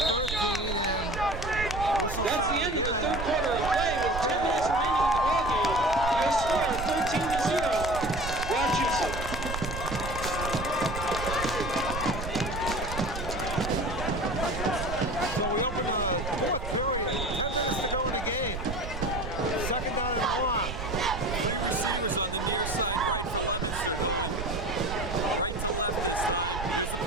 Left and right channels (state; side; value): noise; right; rumble, 6 dB below the sound